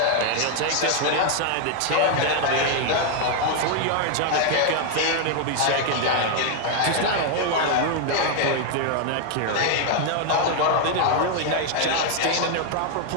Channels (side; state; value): both; different; correlation 0.00